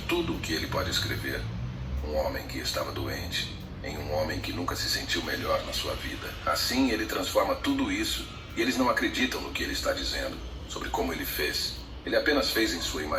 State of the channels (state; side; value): identical; both; correlation 1.00